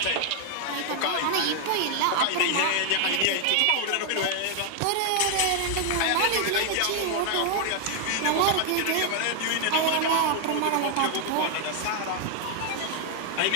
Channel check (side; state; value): both; different; correlation 0.00